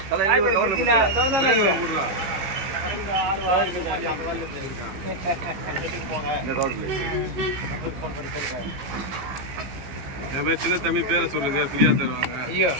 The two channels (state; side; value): late; left; 15 ms